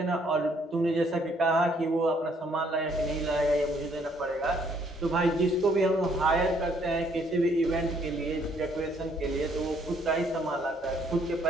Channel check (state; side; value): normal; both; correlation 0.66